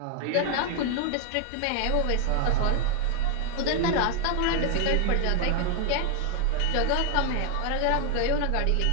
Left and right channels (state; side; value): different; both; correlation 0.00